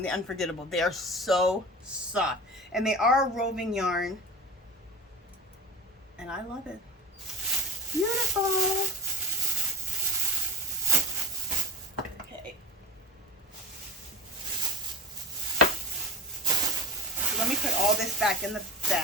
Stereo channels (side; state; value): both; normal; correlation 0.31